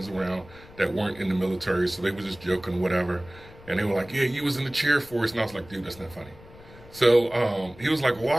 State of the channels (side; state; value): left; noise; rumble, 21 dB below the sound